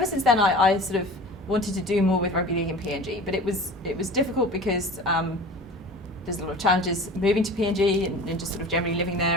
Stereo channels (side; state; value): both; normal; correlation 0.38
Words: since then, I sort of wanted to do more with rugby league in PNG, but it was difficult because there's a lot of challenges moving to PNG and just sort of generally living